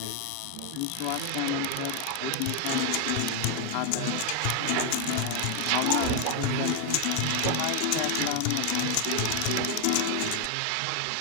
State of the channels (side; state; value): both; different; correlation 0.00